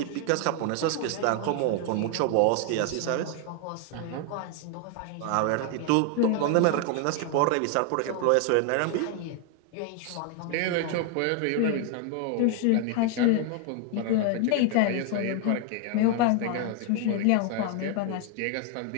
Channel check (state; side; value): different; both; correlation 0.00